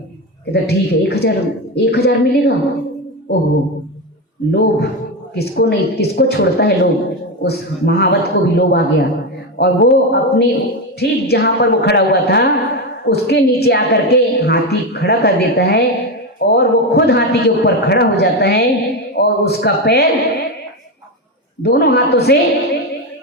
कहता ठीक है, 1000 मिलेगा। ओहो, लोभ किसको नहीं, किसको छोड़ता है लोभ। उस महावत को भी लोभ आ गया और वो अपने ठीक जहाँ पर वो खड़ा हुआ था उसके नीचे आकर के हाथी खड़ा कर देता है और वो खुद हाथी के ऊपर खड़ा हो जाता है और उसका पैर दोनों हाथों से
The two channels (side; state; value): both; normal; correlation 0.13